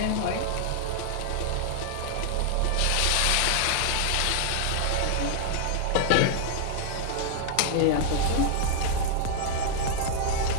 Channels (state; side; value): different; both; correlation -0.01